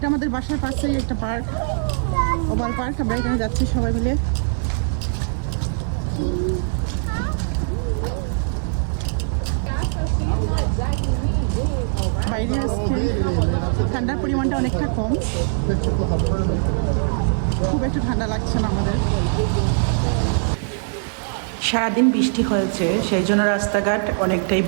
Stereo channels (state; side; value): silent; left; 56 dB below the other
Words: আমাদের বাসার পাশেই একটা পার্ক, ওভাল পার্ক। আমরা এখানে যাচ্ছি সবাই মিলে। বাইরে আজকে ঠান্ডার পরিমাণটা অনেকটা কম, খুব একটা ঠান্ডা লাগছে না আমাদের। সারাদিন বৃষ্টি হয়েছে, সেই জন্য রাস্তাঘাট অনেকটাই